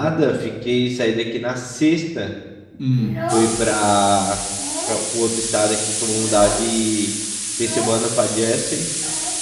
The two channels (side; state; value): both; identical; correlation 1.00